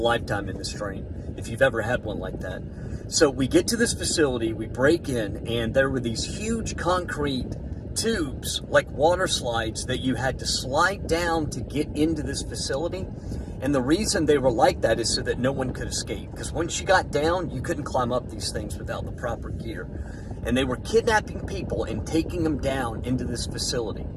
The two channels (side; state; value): both; identical; correlation 1.00